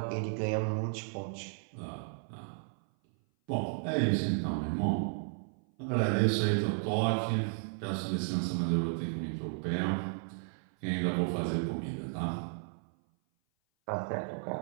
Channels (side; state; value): left; silent; 55 dB below the other